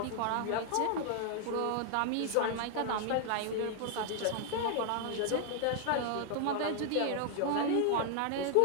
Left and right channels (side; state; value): both; different; correlation 0.00